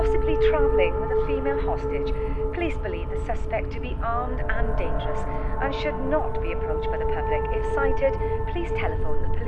travelling with a female hostage. Police believe the suspect to be armed and dangerous and should not be approached by the public. If sighted, please telephone the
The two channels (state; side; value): identical; both; correlation 1.00